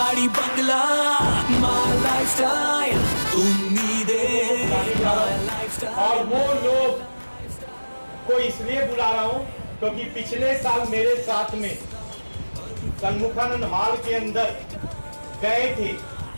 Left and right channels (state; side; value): inverted; both; correlation -1.00